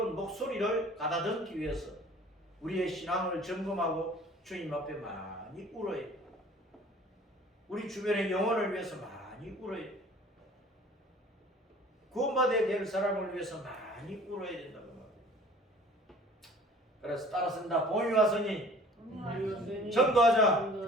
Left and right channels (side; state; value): both; normal; correlation 0.49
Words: 목소리를 가다듬기 위해서 우리의 신앙을 점검하고 주님 앞에 많이 울어야 돼. 우리 주변의 영혼을 위해서 많이 울어야 돼. 구원받아야 될 사람을 위해서 많이 울어야 된다고 말이에요. 그래서 따라쓴다. 봄이 왔으니